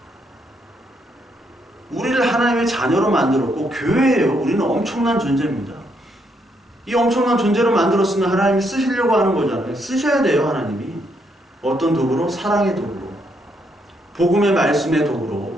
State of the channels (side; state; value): both; normal; correlation 0.75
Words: 우리를 하나님의 자녀로 만들었고 교회예요. 우리는 엄청난 존재입니다. 이 엄청난 존재로 만들었으면 하나님이 쓰시려고 하는 거잖아요. 쓰셔야 돼요. 하나님이. 어떤 도구로? 사랑의 도구로. 복음의 말씀의